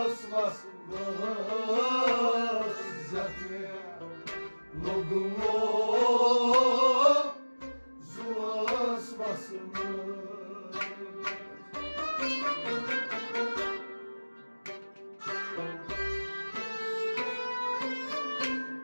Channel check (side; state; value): both; inverted; correlation -1.00